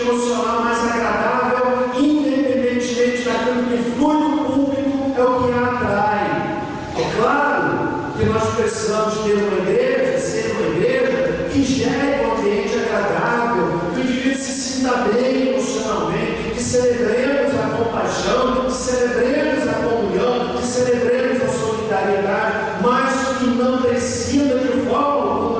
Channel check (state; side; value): identical; both; correlation 1.00